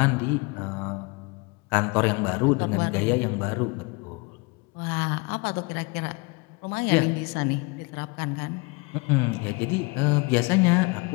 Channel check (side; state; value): right; quieter; 27.6 dB